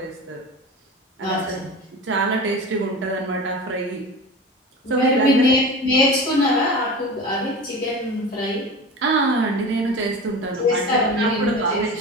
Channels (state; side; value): normal; both; correlation 0.32